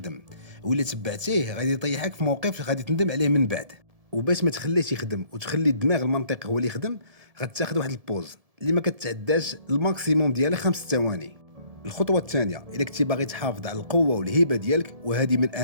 ولا تبعتيه غادي يطيحك في موقف غادي تندم عليه من بعد. وباش ما تخليش يخدم وتخلي الدماغ المنطقي هو اللي يخدم، غتاخذ واحد البوز اللي ما كتعداش الماكسيموم ديالها 5 ثواني. الخطوه الثانيه، الا كنتي باغي تحافظ على القوه والهيبه ديالك، وهذه من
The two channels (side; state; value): left; late; 1.7 ms